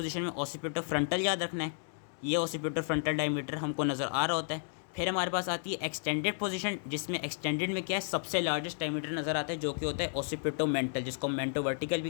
में ऑसिपिटो फ्रंटल याद रखना है, ये ऑसिपिटो फ्रंटल डायमीटर हमको नज़र आ रहा होता है। फिर हमारे पास आती है एक्सटेंडेड पोजीशन, जिसमें एक्सटेंडेड में क्या है, सबसे लार्जेस्ट डायमीटर नज़र आता है जो कि होता है ऑसिपिटो मेंटल, जिसको मेंटो वर्टिकल भी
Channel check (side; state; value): right; silent; digital silence